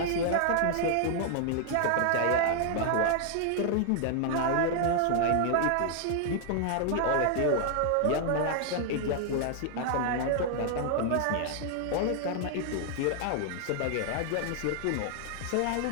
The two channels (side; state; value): both; different; correlation 0.00